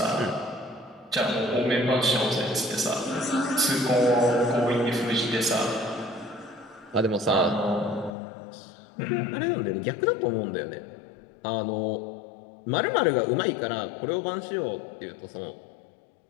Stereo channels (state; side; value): drops out; right; at 8.1 s